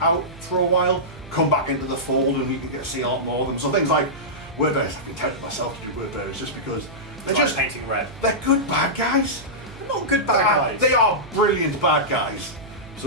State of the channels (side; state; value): right; noise; hum, 18 dB below the sound